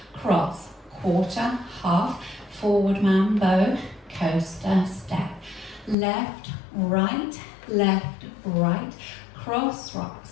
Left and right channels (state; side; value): drops out; right; at 6.0 s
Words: cross, quarter, half, forward mambo, coaster step, left, right, cross rock